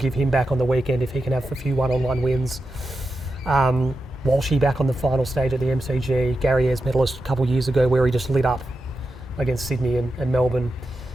him back on the weekend if he can have a few one-on-one wins. Walshy back on the final stage at the MCG. Gary Ayres medalist a couple of years ago where he just lit up against Sydney and Melbourne.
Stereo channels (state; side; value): normal; both; correlation 0.89